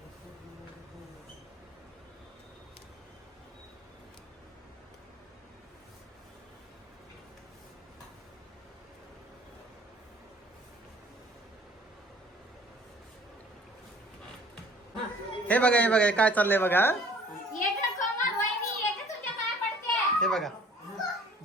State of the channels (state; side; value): normal; both; correlation 0.52